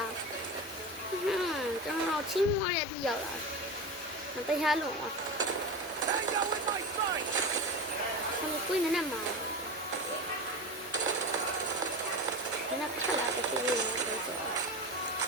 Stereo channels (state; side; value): normal; both; correlation 0.25